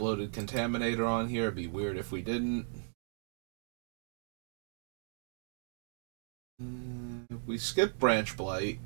Contaminator on here. It'd be weird if we didn't. We skipped Branch Blight.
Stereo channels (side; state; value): left; silent; digital silence